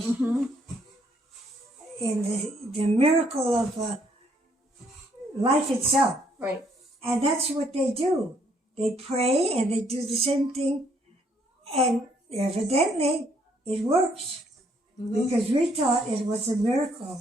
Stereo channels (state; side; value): normal; both; correlation 0.68